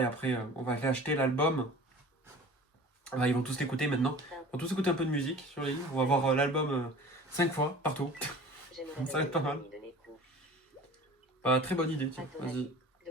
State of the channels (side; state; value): both; normal; correlation 0.42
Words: après, on va aller acheter l'album. Bah, ils vont tous l'écouter maintenant. Ils vont tous écouter un peu de musique sur les livres. On va voir l'album 5 fois, partout. J'aimerais Ça va être pas mal. de Nekou. Bah, très bonne idée, À tiens, ton vas-y. avis,